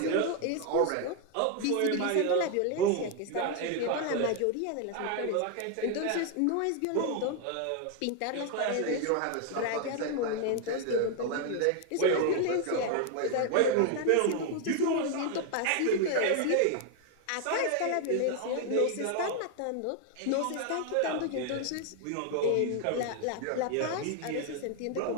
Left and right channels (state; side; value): different; both; correlation 0.01